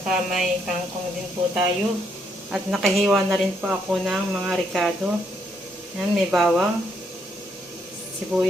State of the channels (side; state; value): both; normal; correlation 0.74